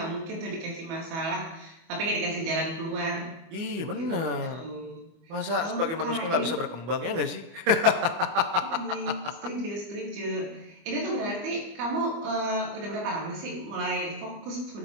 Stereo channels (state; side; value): late; left; 25 ms